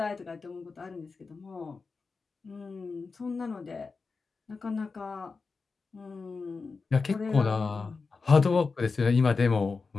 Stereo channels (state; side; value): quieter; right; 4.5 dB